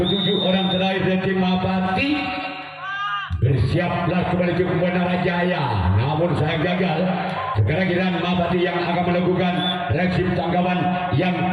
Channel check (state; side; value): identical; both; correlation 1.00